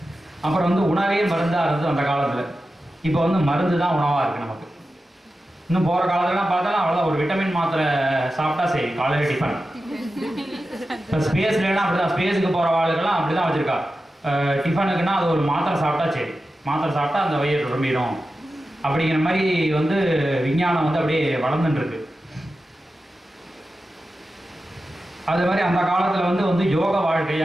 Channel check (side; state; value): both; normal; correlation 0.92